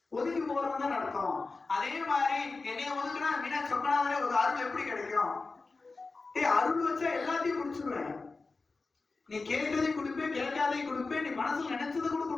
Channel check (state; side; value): quieter; right; 3.9 dB